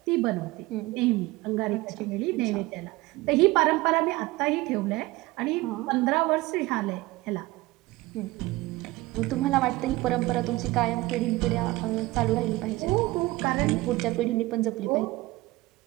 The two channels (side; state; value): left; quieter; 20.0 dB